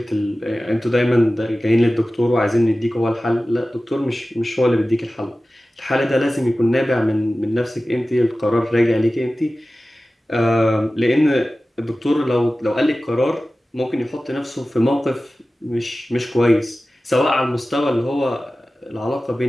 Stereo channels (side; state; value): both; normal; correlation 0.96